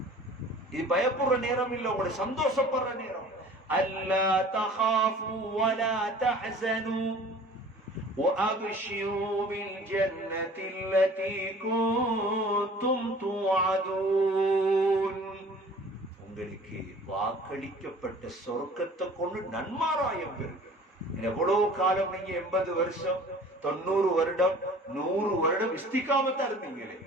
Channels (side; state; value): both; normal; correlation 0.47